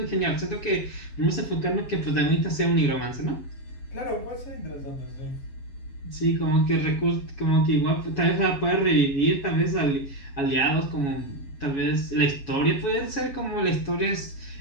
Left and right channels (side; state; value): right; late; 7.2 ms